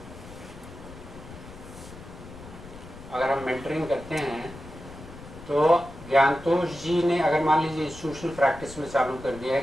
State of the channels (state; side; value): noise; left; rumble, 16 dB below the sound